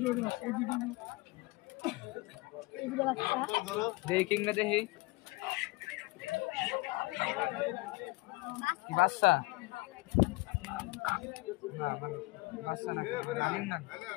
দেখি না দেখি বাচ্চা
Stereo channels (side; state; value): right; quieter; 23.2 dB